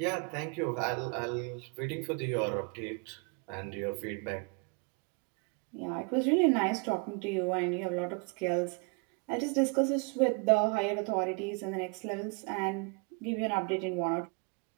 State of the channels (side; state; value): left; quieter; 34.1 dB